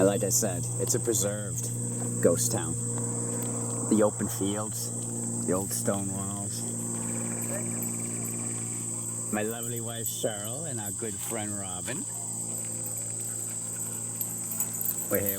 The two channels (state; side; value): identical; both; correlation 1.00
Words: like I said, it's a preserved ghost town. The open fields, the old stone walls. My lovely wife Cheryl and our good friend Robin. We're